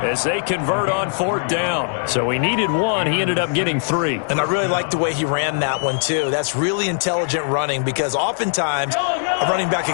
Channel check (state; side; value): silent; right; digital silence